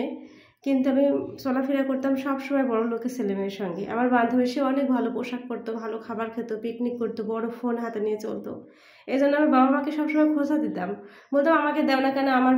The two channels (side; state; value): both; identical; correlation 1.00